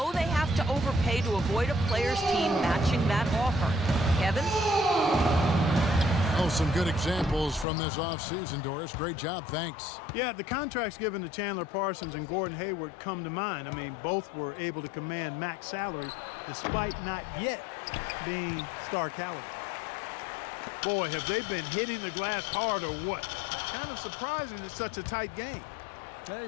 they have to overpay to avoid a player's team matching that offer. Kevin? Oh, some good examples from this offseason, Doris. Great job, thanks. Yeah, the contracts given to Chandler Parsons and Gordon Hayward come to mind. I mean, both were able to command max salaries despite not yet being star caliber. Boy, have they been hitting the glass hard or what? Kind of surprising it's such a tight game. Yeah,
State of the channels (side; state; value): right; drops out; at 7.7 s